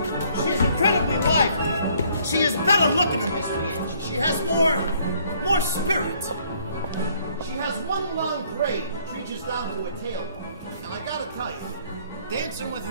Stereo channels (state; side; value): inverted; both; correlation -0.63